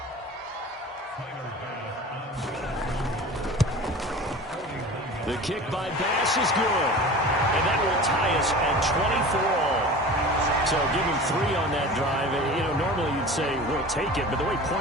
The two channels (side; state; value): both; normal; correlation 0.37